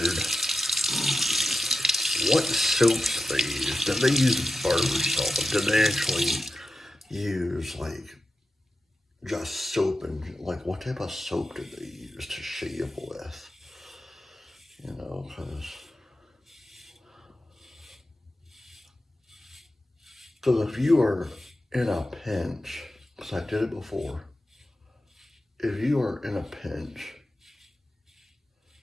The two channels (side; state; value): both; normal; correlation 0.91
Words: what soaps they used. Did they use barber salt? Did they actually use like just soap, and like what type of soap did they use to shave with? You know, because if you are in a pinch, because I did it before, if you are in a pinch